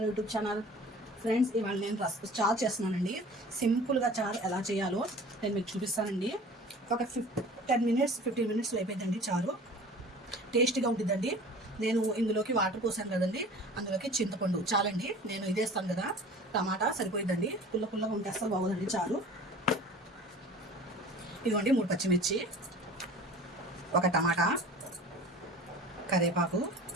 YouTube channel. Friends, ఇవాళ నేను చారు చేస్తున్నానండి. సింపుల్గా చారు ఎలా చేయాలో నేను మీకు చూపిస్తానండి. ఒక 10 మినిట్స్ 15 మినిట్స్లో అయిపోయిందండి చారు. టేస్టీగా ఉంటుందండి. నేను ఇందులోకి వాటర్ పోసాను కదండి, అందులోకి చింతపండు చాలండి. నేను ఇదేస్తాను కదా, టమాటా సరిపోయిందండి. పుల్లగా ఉంటే అస్సలు బాగోదండి చారు. ఇదిగోండి 3 పచ్చిమిర్చి, ఒక టమాటా, కరివేపాకు,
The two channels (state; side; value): normal; both; correlation 0.43